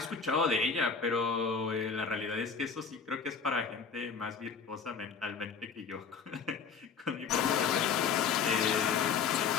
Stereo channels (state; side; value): quieter; right; 5.9 dB